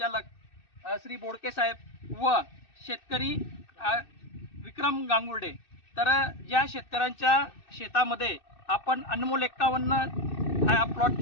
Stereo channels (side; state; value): right; late; 2.6 ms